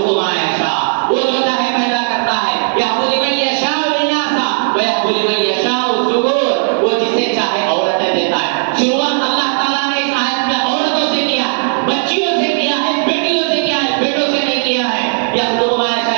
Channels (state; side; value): silent; left; digital silence